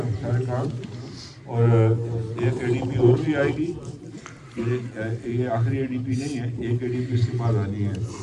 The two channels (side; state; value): both; identical; correlation 1.00